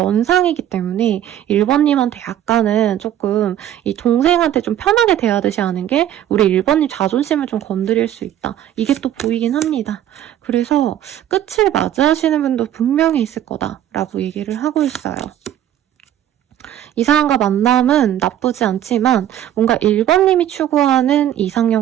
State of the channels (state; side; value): quieter; left; 11.3 dB